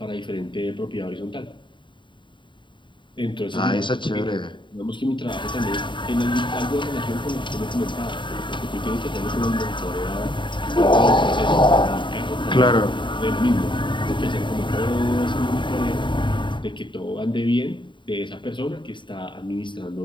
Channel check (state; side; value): late; right; 0.23 ms